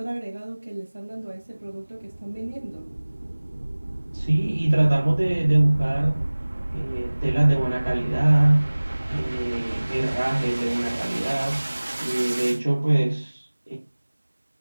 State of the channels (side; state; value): both; inverted; correlation -1.00